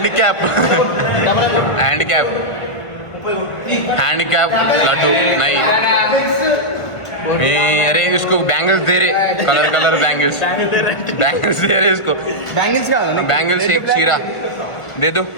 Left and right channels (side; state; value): right; late; 1.4 ms